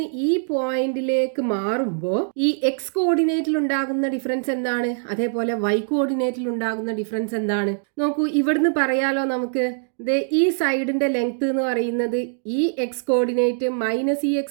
ഈ പോയിന്റിലേക്ക് മാറുമ്പോൾ ഈ എക്സ് കോർഡിനേറ്റിൽ ഉണ്ടാകുന്ന ഡിഫറൻസ് എന്താണ്, അതേപോലെ വൈ കോർഡിനേറ്റിൽ ഉണ്ടാകുന്ന ഡിഫറൻസ് എന്താണ് നോക്കൂ. ഇവിടുന്ന് പറയാലോ നമുക്ക്, ഈ സൈഡിന്റെ ലെങ്ത് എന്ന് പറയുന്നത് ഈ എക്സ് കോർഡിനേറ്റ് മൈനസ് ഈ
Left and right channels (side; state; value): left; silent; digital silence